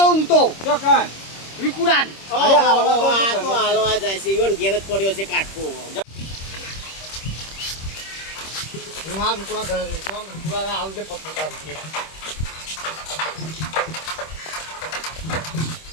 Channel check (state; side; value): late; right; 26 ms